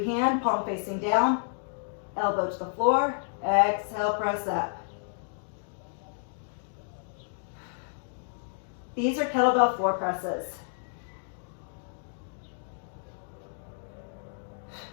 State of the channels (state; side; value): silent; right; digital silence